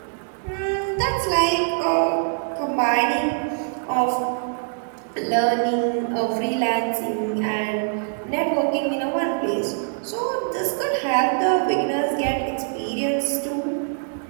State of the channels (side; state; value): left; silent; digital silence